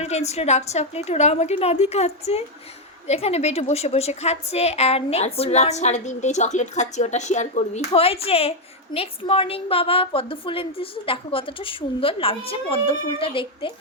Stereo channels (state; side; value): normal; both; correlation 0.03